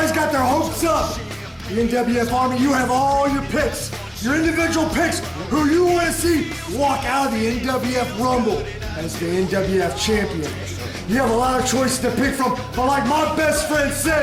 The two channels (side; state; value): both; identical; correlation 1.00